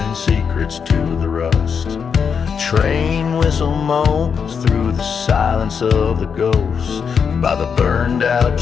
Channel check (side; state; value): right; quieter; 6.5 dB